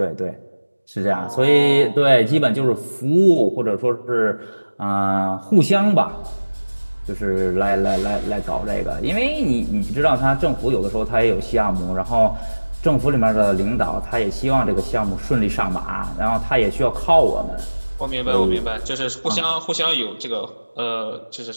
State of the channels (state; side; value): inverted; both; correlation -1.00